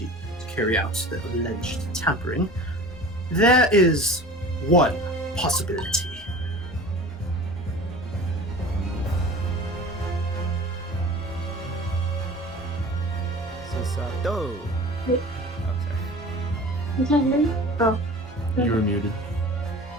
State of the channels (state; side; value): normal; both; correlation 0.40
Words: to carry out the alleged tampering, there is one possibility. Sisato. Wait. Oh, sorry. You can't hear me? Oh. You were muted.